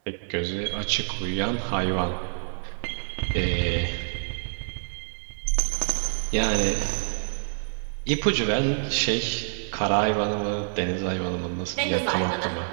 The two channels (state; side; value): silent; left; digital silence